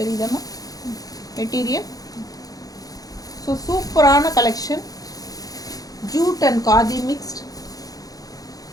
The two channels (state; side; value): late; right; 0.18 ms